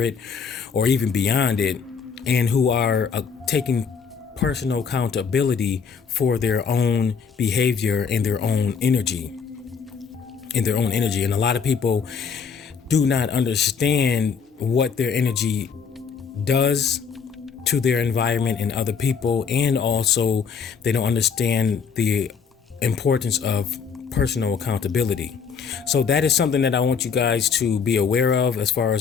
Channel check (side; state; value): right; quieter; 6.1 dB